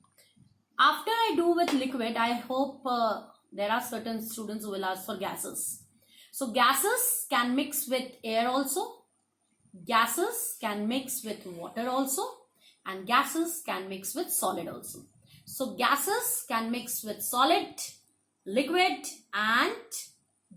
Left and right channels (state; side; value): identical; both; correlation 1.00